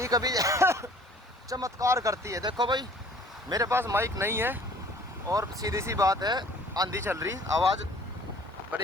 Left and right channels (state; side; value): normal; both; correlation 0.52